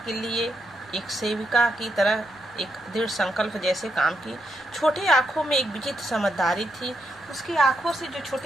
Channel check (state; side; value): noise; left; rumble, 29 dB below the sound